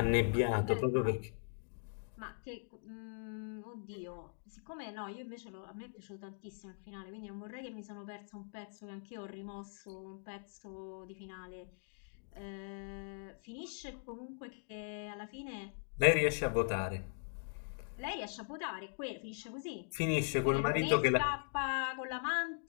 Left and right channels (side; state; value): right; silent; digital silence